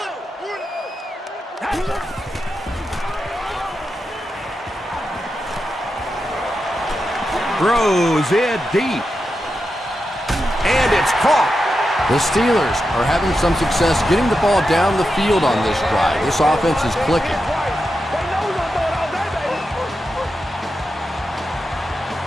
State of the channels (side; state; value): both; normal; correlation 0.88